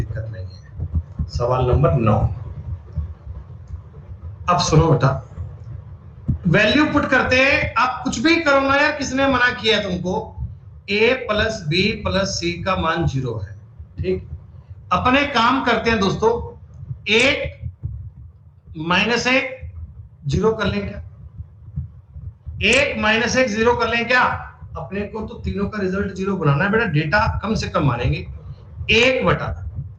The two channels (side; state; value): both; identical; correlation 1.00